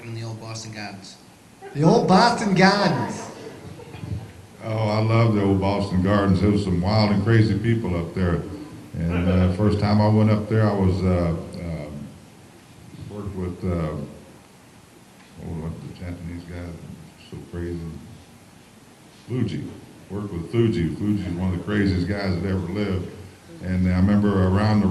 in the old Boston Gardens. The old Boston Gardens. Oh, I love the old Boston Gardens. There was some wild and crazy people up there. And first time I went up there, I was worked with the Japanese Stooges. Stooges is one of the craziest guys that ever lived. And I remember around the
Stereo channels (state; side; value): identical; both; correlation 1.00